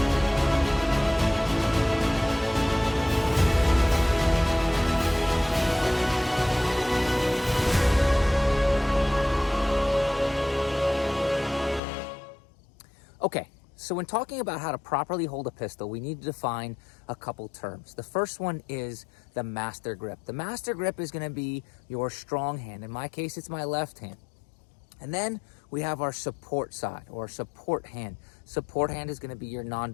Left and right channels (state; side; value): drops out; right; at 11.8 s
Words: Okay, so when talking about how to properly hold a pistol, we need to define a couple terms. The first one is the master grip. The master grip is going to be your strong hand. In my case, it's my left hand. And then we have our support side or support hand. Support hand is going to be your